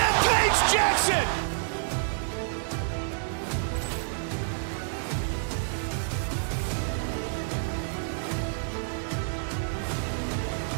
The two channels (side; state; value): left; silent; digital silence